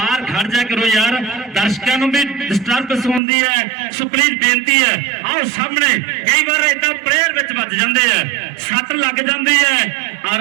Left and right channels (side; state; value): left; drops out; at 3.2 s